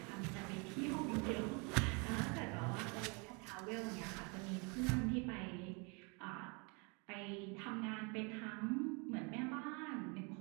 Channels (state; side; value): quieter; left; 32.1 dB